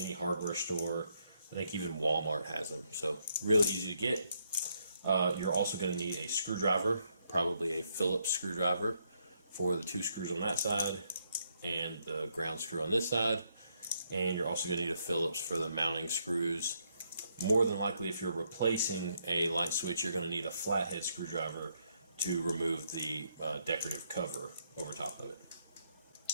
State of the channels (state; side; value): inverted; both; correlation -0.76